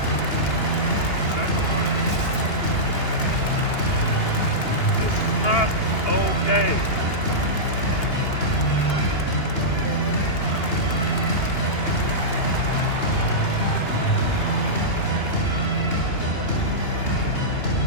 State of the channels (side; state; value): right; late; 2.8 ms